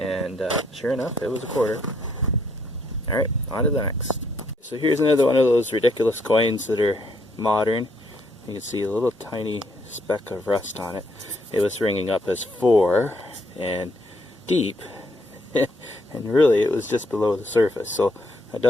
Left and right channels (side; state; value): both; normal; correlation 0.71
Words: sure enough, it was a quarter. Alright, on to the next. So here's another one of those ridiculous coins that are modern. You can see a little tiny speck of rust on it. It was ringing up as 4 and deep. And really, it was just below the surface. So I